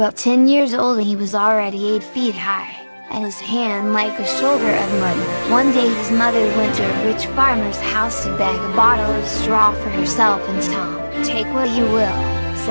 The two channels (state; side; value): inverted; both; correlation -1.00